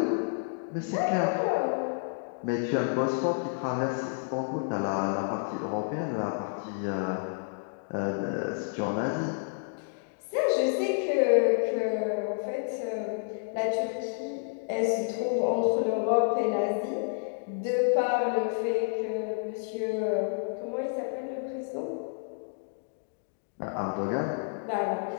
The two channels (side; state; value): right; silent; digital silence